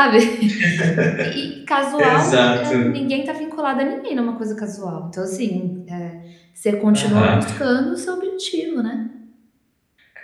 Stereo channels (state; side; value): identical; both; correlation 1.00